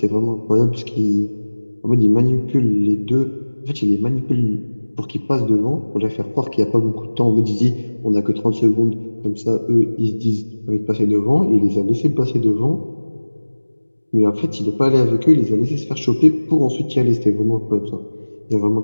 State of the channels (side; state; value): both; inverted; correlation -1.00